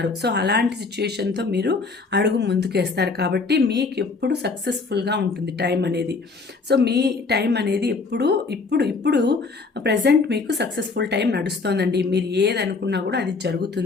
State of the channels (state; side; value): quieter; right; 4.2 dB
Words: సో అలాంటి సిచ్యుయేషన్తో మీరు అడుగు ముందుకేస్తారు. కాబట్టి మీకు ఎప్పుడు సక్సెస్ఫుల్గా ఉంటుంది టైం అనేది. సో మీ టైం అనేది ఇప్పుడు ప్రజెంట్ మీకు సక్సెస్ఫుల్ టైం నడుస్తోందండి. మీరు ఏది అనుకున్నా కూడా అది